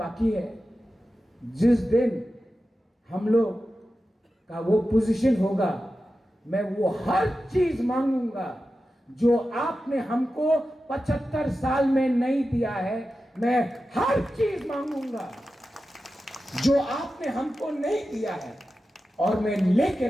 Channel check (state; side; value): normal; both; correlation 0.93